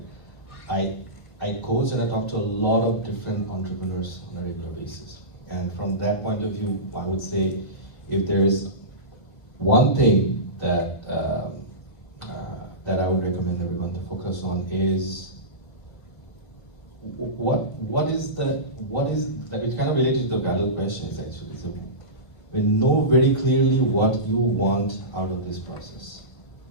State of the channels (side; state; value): right; late; 1.4 ms